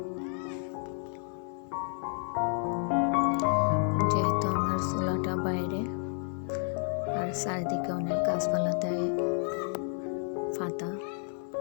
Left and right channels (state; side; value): silent; right; 57 dB below the other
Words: যেহেতু আমার চুলাটা বাইরে আর চারিদিকে অনেক গাছপালাতে পাতা